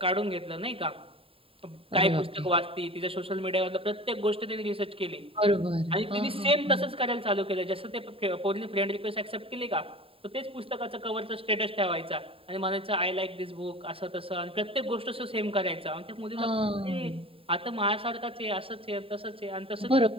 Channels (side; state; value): left; late; 0.27 ms